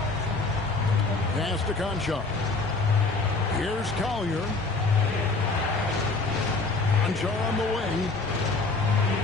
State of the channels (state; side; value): quieter; right; 3.7 dB